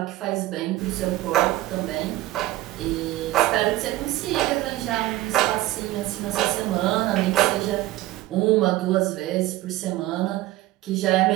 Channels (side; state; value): left; quieter; 16.8 dB